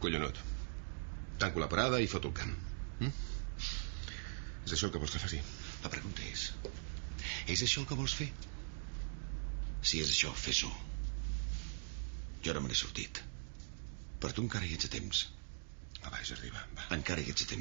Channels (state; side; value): silent; left; digital silence